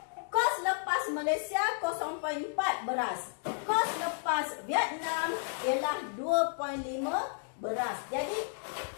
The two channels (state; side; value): silent; right; digital silence